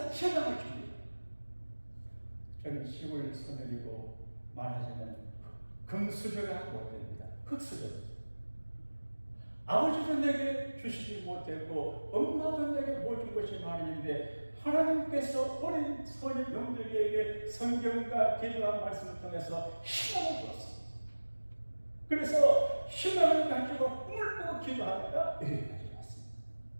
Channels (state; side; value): inverted; both; correlation -1.00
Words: 희망을 줍니다. 저는 시골 소녀이고 말하자면 금수저가 못됩니다. 흙수저. 아버지도 내게 주시지 못했고 엄마도 내게 못 준 것이 많은데 하나님께서 어린 소녀 영들에게 성경과 기도한 말씀을 통해서 희망을 주었습니다. 그래서 희망을 가지고 꿈을 꾸고 기도하다가 여기까지 왔습니다.